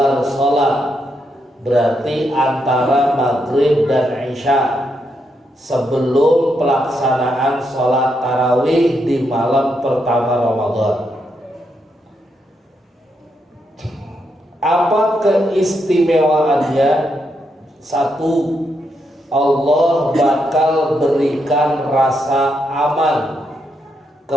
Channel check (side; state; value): both; normal; correlation 0.80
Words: sholat, berarti antara maghrib dan isya, sebelum pelaksanaan sholat tarawih di malam pertama Ramadan. Apa keistimewaannya? Satu, Allah bakal berikan rasa aman